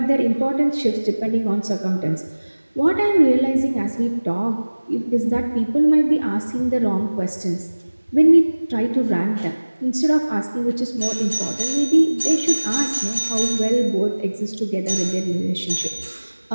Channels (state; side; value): inverted; both; correlation -1.00